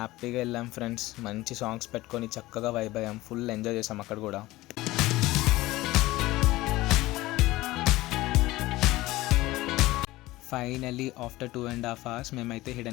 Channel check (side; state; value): right; quieter; 18.4 dB